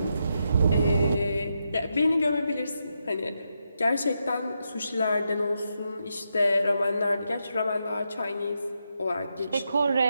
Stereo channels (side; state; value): both; inverted; correlation -0.84